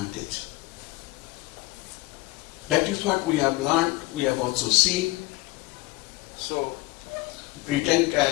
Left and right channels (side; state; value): right; quieter; 20.1 dB